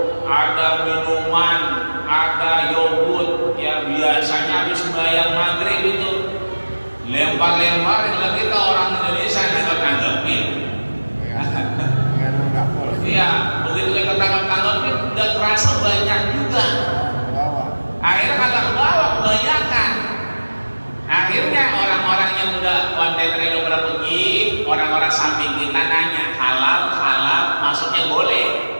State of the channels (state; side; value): inverted; both; correlation -1.00